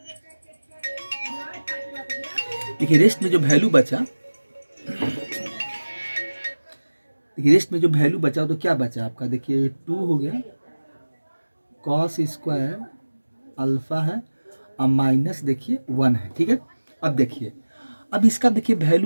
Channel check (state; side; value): inverted; both; correlation -1.00